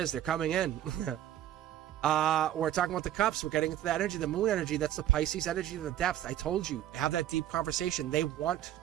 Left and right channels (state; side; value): quieter; left; 12.2 dB